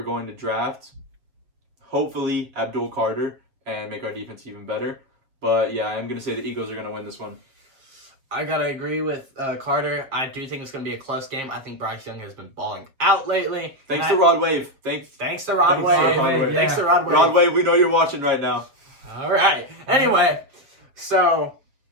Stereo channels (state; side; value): late; left; 7.3 ms